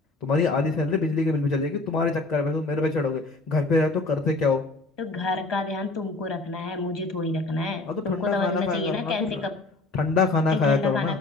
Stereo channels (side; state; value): right; quieter; 3.2 dB